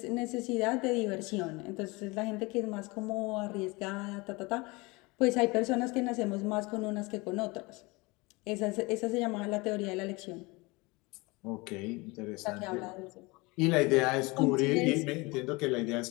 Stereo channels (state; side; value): quieter; right; 25.0 dB